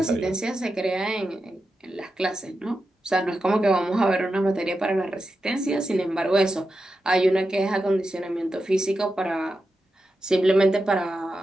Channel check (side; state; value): both; normal; correlation 0.89